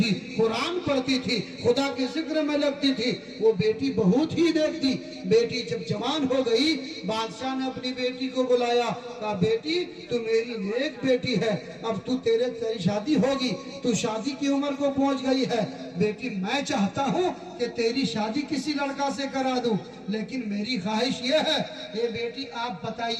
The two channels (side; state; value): both; identical; correlation 1.00